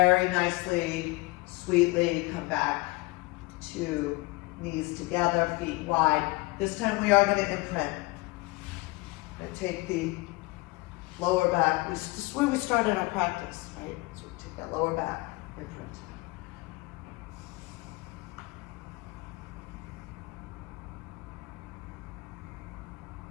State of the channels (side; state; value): right; quieter; 23.6 dB